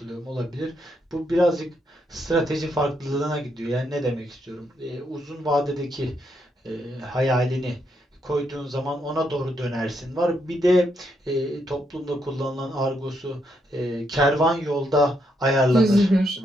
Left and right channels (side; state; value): both; normal; correlation 0.78